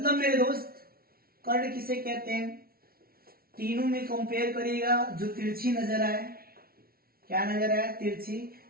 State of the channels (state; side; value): late; left; 0.44 ms